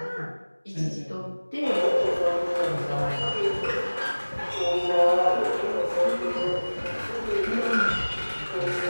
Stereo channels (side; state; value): both; inverted; correlation -1.00